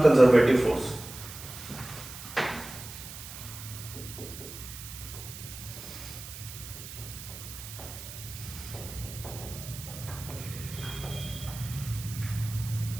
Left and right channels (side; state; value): right; noise; hiss, 12 dB below the sound